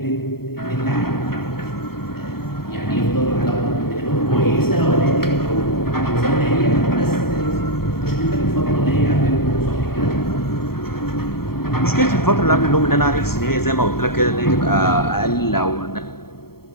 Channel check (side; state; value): right; late; 0.95 ms